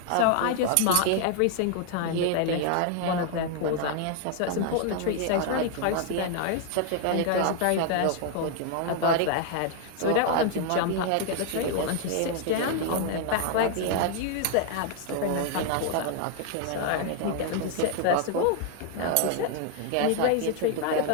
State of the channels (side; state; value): both; different; correlation 0.00